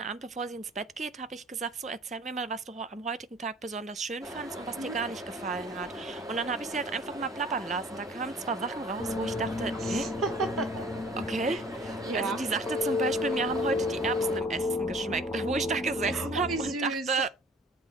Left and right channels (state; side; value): normal; both; correlation 0.51